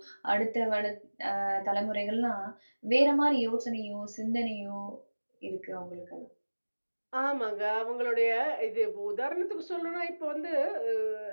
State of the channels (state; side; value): inverted; both; correlation -1.00